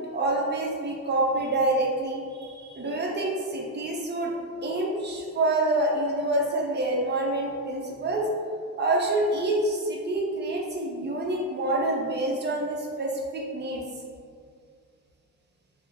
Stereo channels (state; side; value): normal; both; correlation 0.02